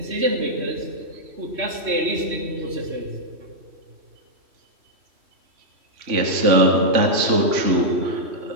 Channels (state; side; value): late; left; 3.1 ms